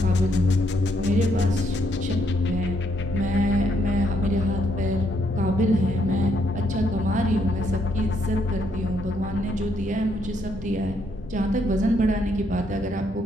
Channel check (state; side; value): normal; both; correlation 0.73